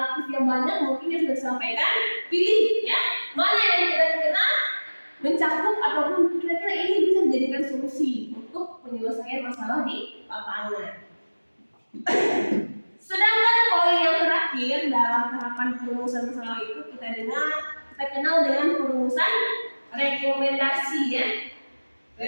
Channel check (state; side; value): inverted; both; correlation -1.00